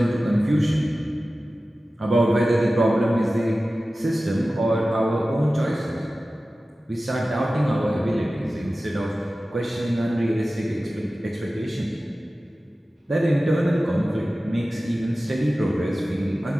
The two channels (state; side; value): normal; both; correlation 0.96